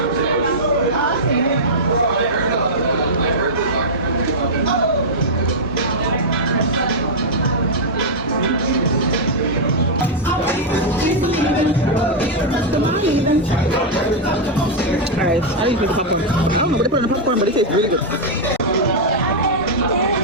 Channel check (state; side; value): normal; both; correlation -0.04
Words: Alright, I usually the popcorn. I don't know what they put in the popcorn, but it tastes really good.